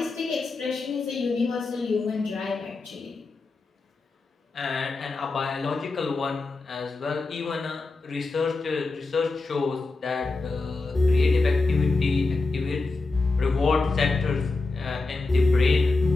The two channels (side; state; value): right; quieter; 3.5 dB